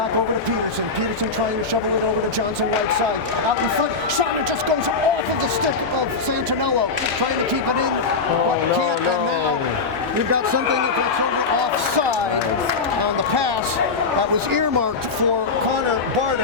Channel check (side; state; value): right; quieter; 4.3 dB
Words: over to Peterson. Peterson trying to shovel it over to Johnson right side. Out in front, shot, and it just goes off of the stick of Santinello. Trying to keep it in, but can't. And now you've got something that's over offside on the pass that was earmarked for Connor